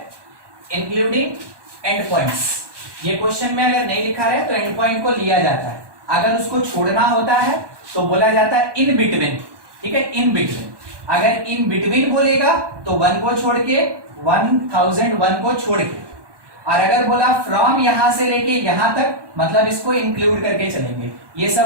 इंक्लूडिंग एंड पॉइंट्स। ये क्वेश्चन में अगर नहीं लिखा है तो एंड पॉइंट को लिया जाता है, अगर उसको छोड़ना होता है तो बोला जाता है इन बिटवीन, ठीक है, इन बिटवीन। अगर इन बिटवीन बोलेगा तो 1 को छोड़ के 1001 को छोड़ के, और अगर बोला फ्रॉम यहां से लेके यहां तक, मतलब इसको इंक्लूड करके चलेंगे। ये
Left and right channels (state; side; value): late; left; 1.2 ms